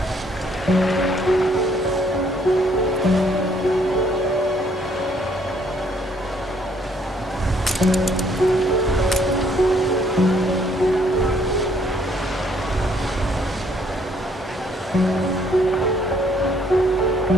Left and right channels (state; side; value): normal; both; correlation 0.65